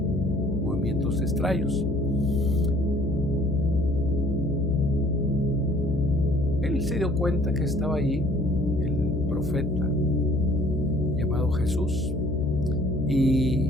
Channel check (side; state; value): left; noise; hum, 4 dB below the sound